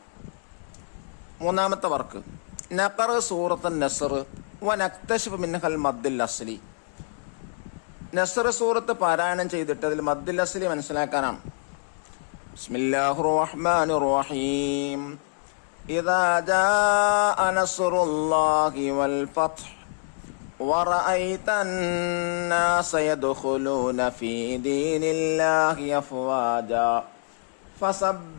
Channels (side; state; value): right; silent; 61 dB below the other